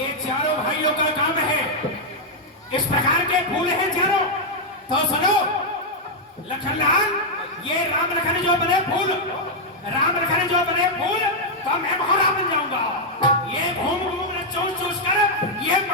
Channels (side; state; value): both; normal; correlation -0.03